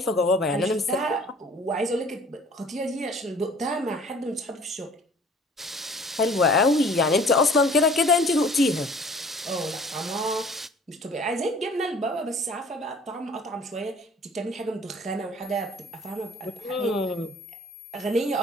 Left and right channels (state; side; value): normal; both; correlation 0.51